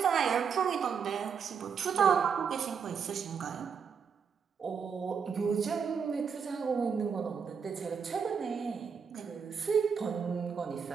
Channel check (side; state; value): left; quieter; 6.5 dB